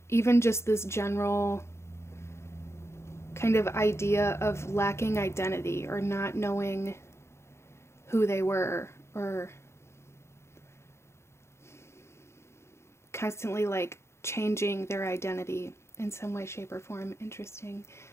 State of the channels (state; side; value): late; right; 0.13 ms